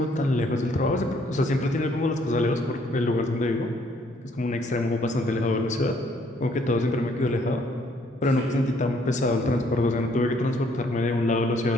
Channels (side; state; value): both; normal; correlation 0.65